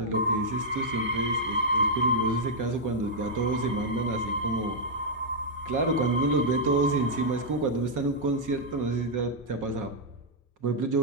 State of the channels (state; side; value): normal; both; correlation -0.06